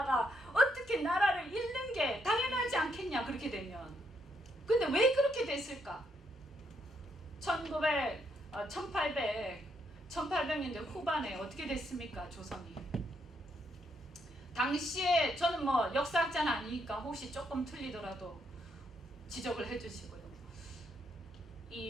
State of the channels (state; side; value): normal; both; correlation 0.75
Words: 어떻게 나라를 잃는 게 당연하지 않겠냐, 그렇게 되면. 근데 왜 그렇게 됐을까? 1800년대 후반에 어떻게 됐습니까, 조선이? 당시에 저는 뭐 역사학자는 아니니까 혹시 조금 틀리더라도 지적을 해주시고요.